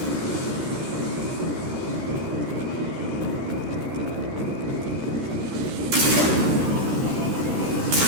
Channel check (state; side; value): late; left; 13 ms